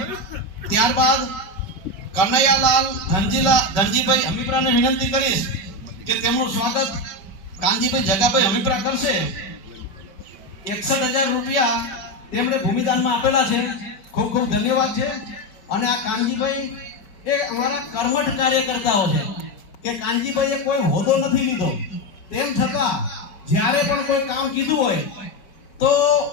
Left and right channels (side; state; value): right; late; 4.7 ms